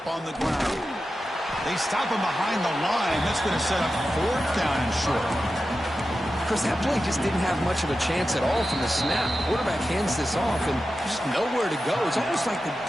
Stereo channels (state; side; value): normal; both; correlation 0.92